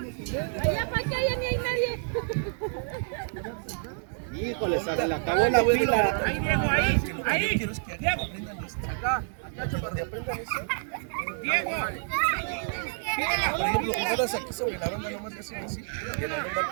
Allá para que allá ni hay nadie. Híjole, se le acabó la pila. Ahí, Diego, ahí. Quiero es que aprendan esto. Acá, donde aprendan eso. Diego. Por ejemplo, jugadas aquí sobre la banda nomás le hacen así, y el balón va a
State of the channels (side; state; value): left; silent; 59 dB below the other